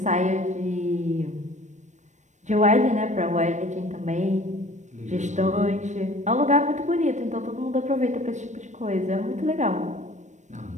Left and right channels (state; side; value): late; left; 0.34 ms